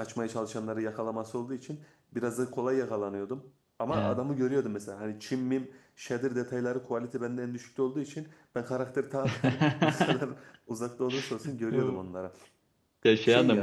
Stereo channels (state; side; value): identical; both; correlation 1.00